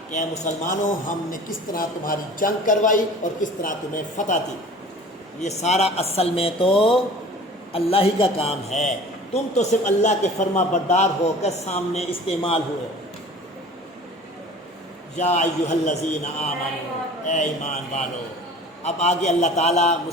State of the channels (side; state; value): both; normal; correlation 0.44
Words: کہ اے مسلمانوں، ہم نے کس طرح تمہاری جنگ کروائی اور کس طرح تمہیں فتح دی۔ یہ سارا اصل میں تو اللہ ہی کا کام ہے، تم تو صرف اللہ کے فرما بردار ہو کر سامنے استعمال ہوئے۔ یا ایھا الذین آمنوا، اے ایمان والو۔ اب آگے اللہ تعالیٰ